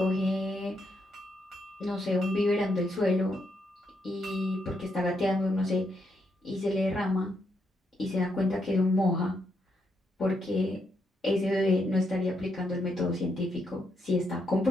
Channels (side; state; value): both; normal; correlation 0.79